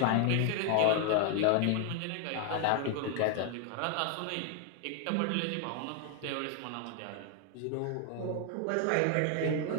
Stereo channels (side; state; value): both; different; correlation 0.00